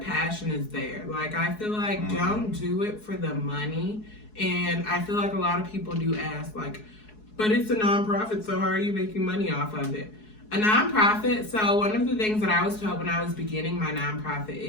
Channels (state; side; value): late; right; 4.7 ms